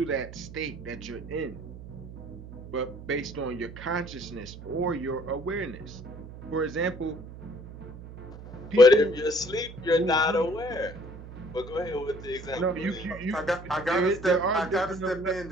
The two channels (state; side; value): noise; right; hum, 14 dB below the sound